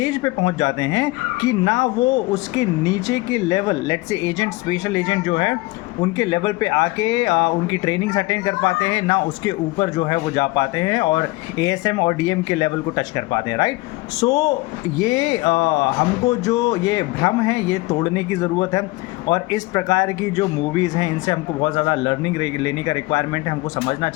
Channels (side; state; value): right; quieter; 21.5 dB